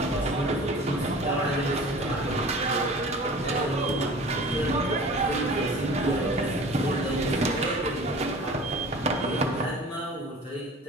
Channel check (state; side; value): normal; both; correlation 0.42